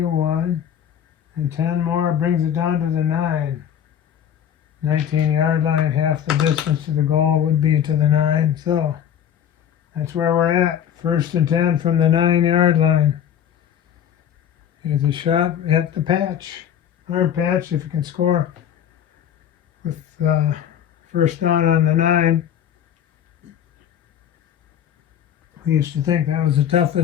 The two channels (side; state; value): right; quieter; 9.4 dB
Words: and 10 more brings it down to the 9. 19-yard line, half the distance to the goal would be to the 9. So that's where we're at. 1st and 10 from the 9-yard line. Here's a shot at the patch. Hard patch if you can score with first down on the 9. We used to think that was the